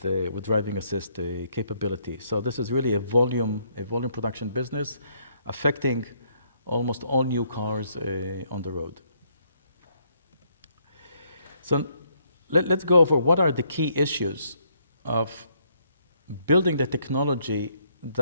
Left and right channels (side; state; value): both; inverted; correlation -0.70